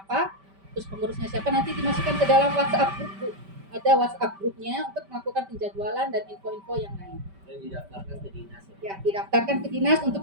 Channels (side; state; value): left; late; 5.1 ms